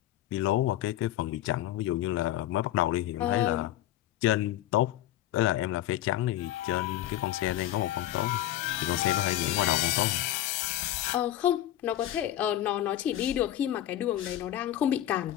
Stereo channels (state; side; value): quieter; right; 13.5 dB